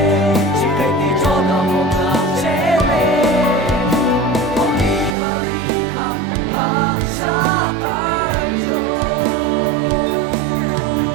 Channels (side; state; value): left; drops out; at 5.2 s